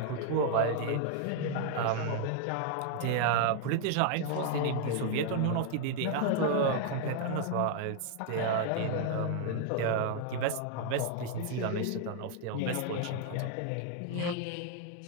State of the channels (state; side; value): different; both; correlation 0.00